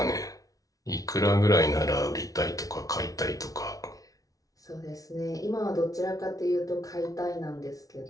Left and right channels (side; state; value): right; late; 0.18 ms